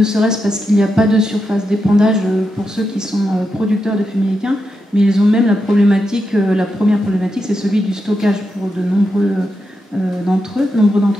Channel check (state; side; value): normal; both; correlation 0.86